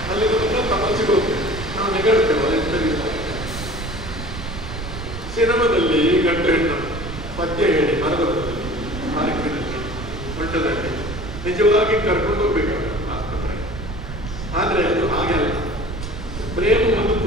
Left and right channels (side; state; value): right; noise; rumble, 9 dB below the sound